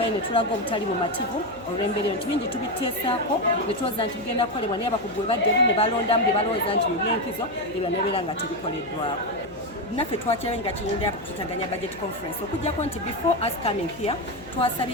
ne tulaga obutali bumativu olw'embeera nti bingi tubiteesaako ne tulowooza nti bigenda kukolebwa naye abakugu bwe baddeyo ne balondamu bye balowooza nti mu byenkizo ebyo nebeera nga tebikoleddwako. naffe twakirayo nga kiyingira kututaganya budget conference okujjako nti before us coming here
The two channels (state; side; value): noise; left; hum, 21 dB below the sound